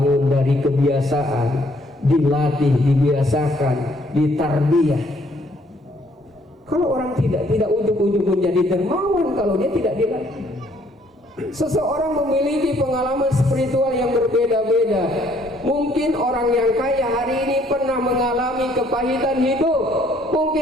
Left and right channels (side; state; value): both; normal; correlation 0.64